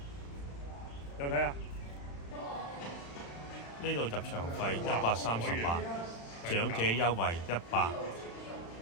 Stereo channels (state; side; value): late; right; 35 ms